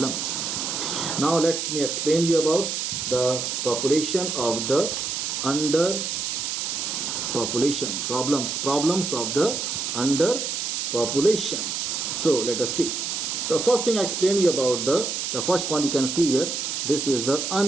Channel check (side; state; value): right; noise; hiss, 2 dB below the sound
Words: Now let me explain you about the population of the underpopulation, problems of the underpopulation. So let us see. The first thing I explained you about the first point you can see here. This is the